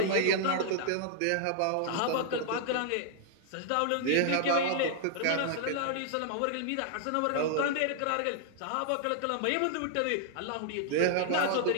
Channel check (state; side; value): different; both; correlation -0.01